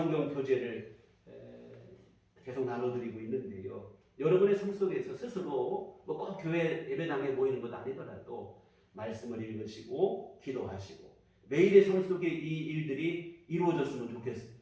교재를 계속 나눠드리고 있는데요. 여러분의 삶 속에서 스스로 뭐 꼭 교회 예배당에 모이는 것 아니더라도 말씀을 읽으시고 기도하시고 매일의 삶 속에 이 일들이 이루어졌으면 좋겠습니다.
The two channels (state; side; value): identical; both; correlation 1.00